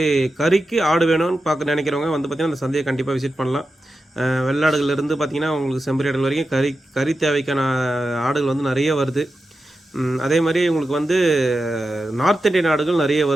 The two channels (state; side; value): normal; both; correlation 0.91